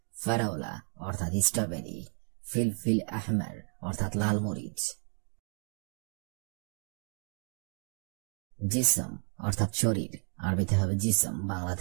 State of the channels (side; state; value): left; quieter; 37.0 dB